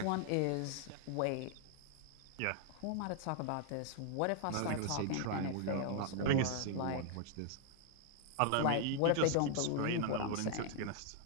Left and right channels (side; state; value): both; different; correlation 0.00